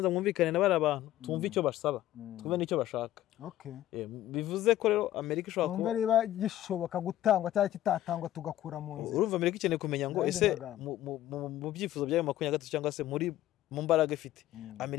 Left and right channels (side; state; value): right; quieter; 13.7 dB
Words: mwumvikane na bari abantu, tumve icyo basaba, twumve n'icyo bashaka. Bivuze ko rero Amerika ishobora kuba niba gishoboka gutangwa cyangwa kitatangwa tugakura mu nzira. Urumva Amerika ikeneye kumenya ngo ese mu byifuzo byayo 23 cyangwa se mu mbaraga ifite,